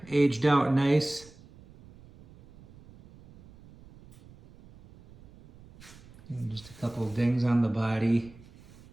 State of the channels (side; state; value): right; noise; rumble, 23 dB below the sound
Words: aged out nice. And just a couple of dings on the body.